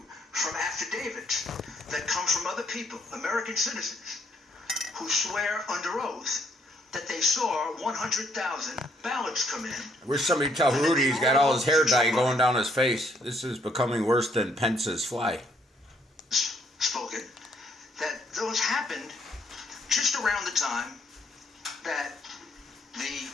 from affidavits that come from other people, American citizens, who swear under oath that they saw 100,000 ballots come in. I wish somebody tell Rudy he's got all his hair dye going down his face. This is becoming worse than Pence's fly. Spoken, that those happened just around the time that the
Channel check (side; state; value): both; normal; correlation 0.69